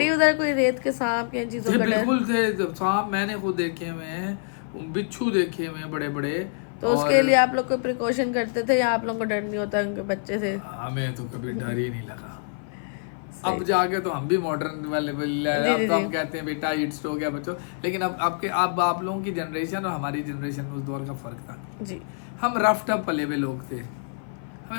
उधर कोई रेत के सांप या चीजों थे, का डर? बिल्कुल थे सांप, मैंने खुद देखे हुए हैं, बिच्छू देखे हुए हैं बड़े बड़े। तो उसके लिए आप लोग कोई प्रिकॉशन करते थे या आप लोग को डर नहीं होता उनके बच्चे से? हमें तो कभी डर ही नहीं लगा। अब जाके तो हम भी मॉडर्न वाले अब तो हम कहते हैं बेटा हीट स्ट्रोक है बच्चों, लेकिन अब आप लोगों की जनरेशन और हमारी जनरेशन में उस दौर का फर्क था जी। हम रफ टफ पले हुए लोग थे,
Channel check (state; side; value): silent; right; 55 dB below the other